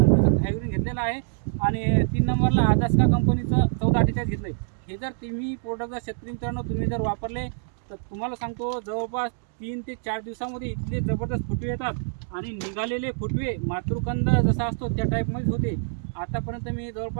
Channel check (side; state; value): left; silent; digital silence